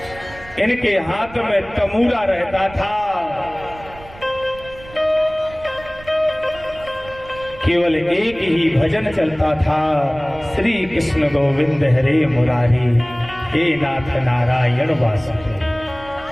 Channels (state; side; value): noise; right; rumble, 19 dB below the sound